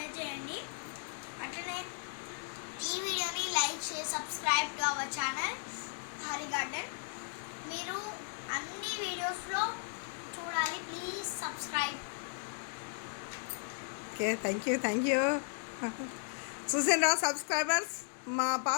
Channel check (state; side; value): silent; right; digital silence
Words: చేయండి. అట్లనే ఈ వీడియోని లైక్ చేసి subscribe to our channel Hari garden. మీరు అన్ని వీడియోస్లో చూడాలి. Please subscribe. Okay, thank you. చూసారా సబ్స్క్రైబర్స్? మా